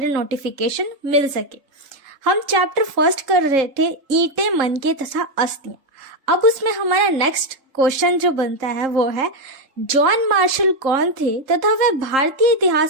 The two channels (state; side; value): late; left; 3.8 ms